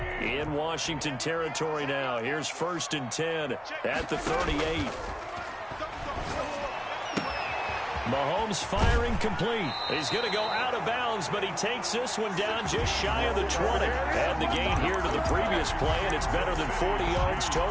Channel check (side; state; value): both; identical; correlation 1.00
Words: In Washington territory now. Here's 1st and 10 at the 38. Mahomes firing complete. He's going to go out of bounds, but he takes this one down just shy of the 20. Add the gain here to the previous play, and it's better than 40 yards